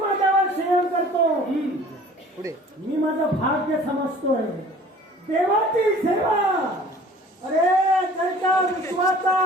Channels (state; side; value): normal; both; correlation 0.48